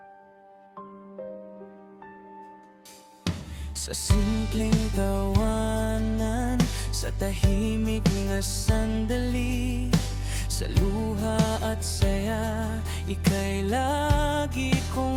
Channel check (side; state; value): both; identical; correlation 1.00